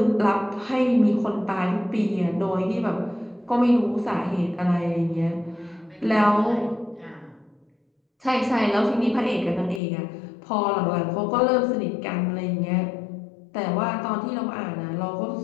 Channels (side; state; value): right; drops out; at 9.8 s